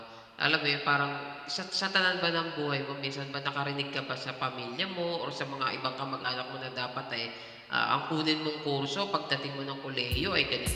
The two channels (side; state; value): both; identical; correlation 1.00